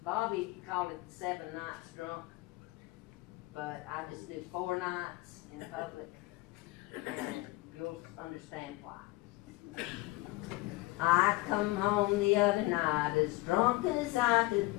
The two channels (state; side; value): quieter; right; 20.8 dB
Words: Bobby called it the 7 nights drunk, but I just did 4 nights in public, and you'll understand why. I come home the other night as drunk as I